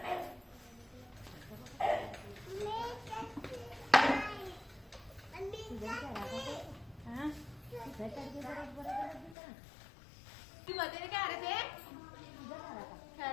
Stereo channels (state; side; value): drops out; right; at 9.3 s